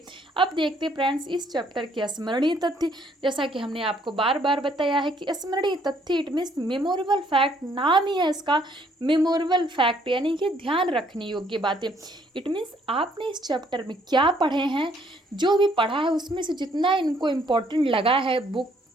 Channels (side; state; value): both; normal; correlation 0.65